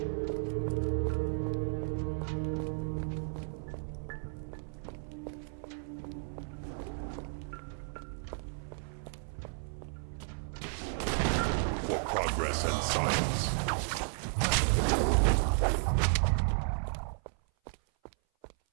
Progress and science.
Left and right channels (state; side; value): silent; left; 55 dB below the other